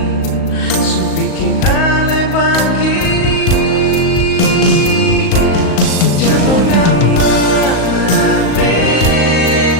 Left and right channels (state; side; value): late; right; 38 ms